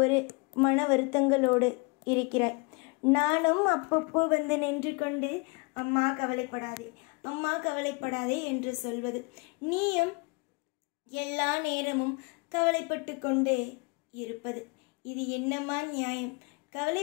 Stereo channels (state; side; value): quieter; right; 30.1 dB